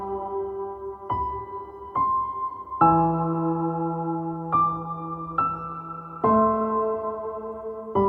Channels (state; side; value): identical; both; correlation 1.00